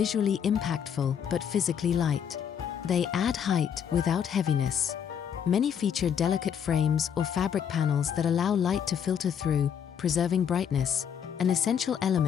impactful but physically light. They add height without heaviness. Many feature delicate frames or fabric panels that allow light to filter through, preserving brightness, an essential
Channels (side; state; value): right; quieter; 8.1 dB